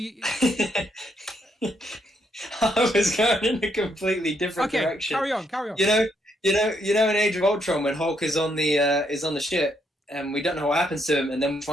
I was going in a completely different direction. Carry on. In Age of Ultron when Hulk is on the ship and we don't know what happens to him, and then we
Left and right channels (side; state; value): both; normal; correlation 0.75